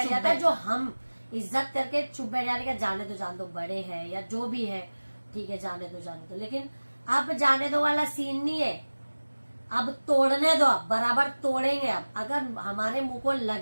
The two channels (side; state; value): both; inverted; correlation -1.00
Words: चुप जाता है। बैठ जो हम इज्जत करके चुप बैठ जाने का, जान दो बड़े हैं या जो भी है, ठीक है जाने दो, लेकिन अब जाने दो वाला सीन नहीं है। अब तोड़ने दो, अब बराबर तोड़ेंगे। अब अगर हमारे मुंह को